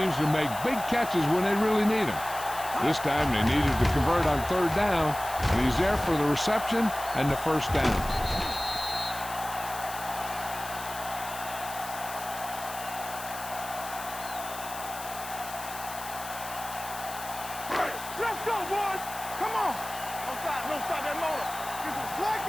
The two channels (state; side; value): noise; left; hiss, 12 dB below the sound